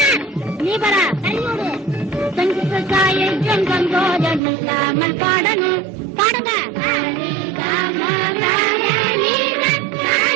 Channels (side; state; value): left; drops out; at 4.4 s